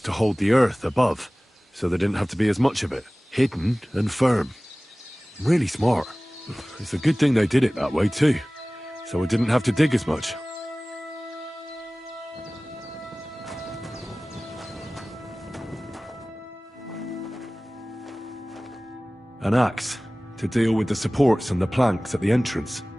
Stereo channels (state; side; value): normal; both; correlation 0.98